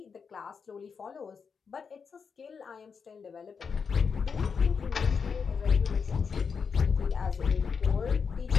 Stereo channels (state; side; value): quieter; right; 5.9 dB